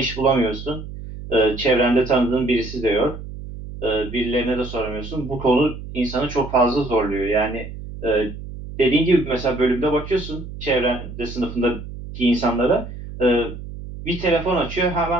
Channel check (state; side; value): noise; right; hum, 11 dB below the sound